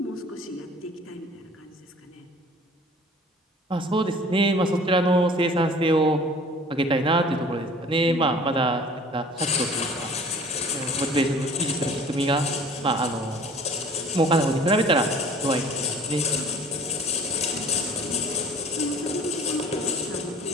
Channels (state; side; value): normal; both; correlation 0.48